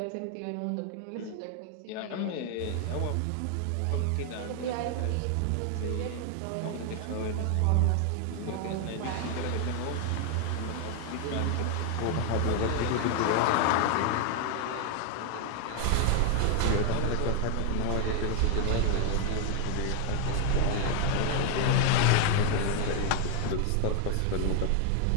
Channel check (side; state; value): both; different; correlation 0.00